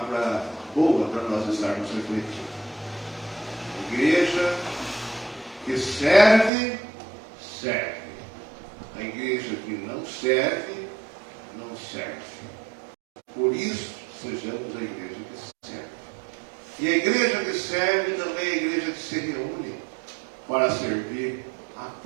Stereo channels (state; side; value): drops out; left; at 6.5 s